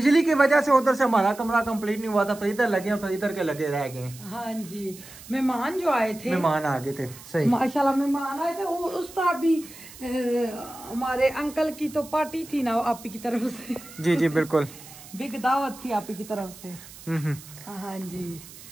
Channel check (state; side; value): noise; right; hiss, 18 dB below the sound